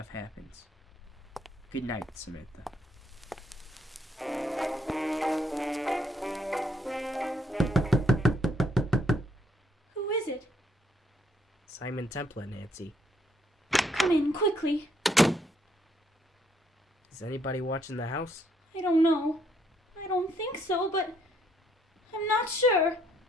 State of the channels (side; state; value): both; normal; correlation 0.70